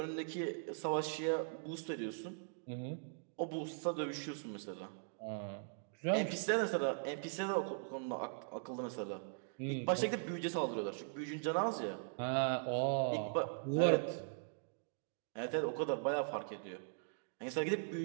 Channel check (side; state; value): left; silent; digital silence